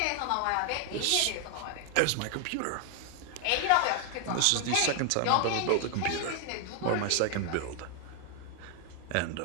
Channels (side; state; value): both; different; correlation 0.00